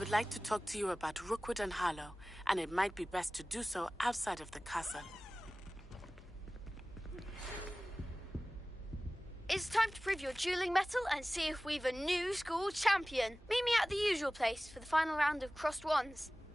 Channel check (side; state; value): both; normal; correlation 0.98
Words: like to talk to you about Rookwood and Harlow, and it might be best to do so outside of the castle. It's time to prove your dueling mettle and see if we've a new school champion. Meet me at the usual place for the final round of crossed wands.